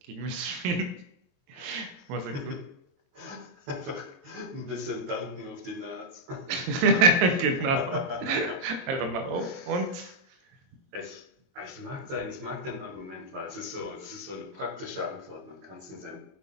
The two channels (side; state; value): left; late; 22 ms